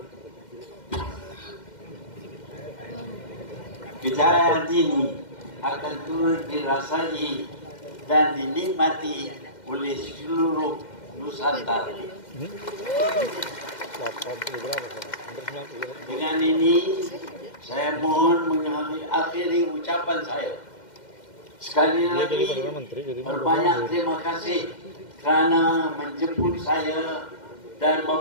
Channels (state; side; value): late; right; 2.1 ms